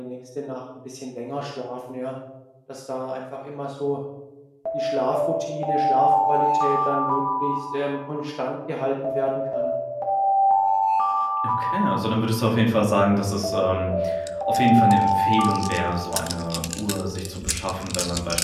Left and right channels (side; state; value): both; identical; correlation 1.00